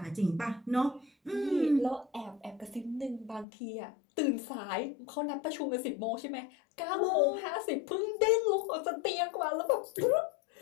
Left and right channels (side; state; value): right; drops out; at 3.5 s